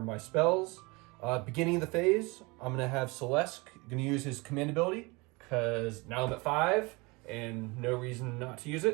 my spells. Beginning of the phase, I'm going to have Syll'Esske going to use his command ability, because now I'm at 5 and no reason not to use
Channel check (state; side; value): quieter; left; 25.9 dB